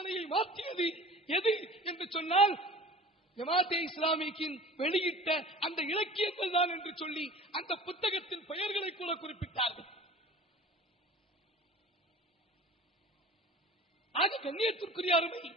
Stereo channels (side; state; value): both; normal; correlation 0.42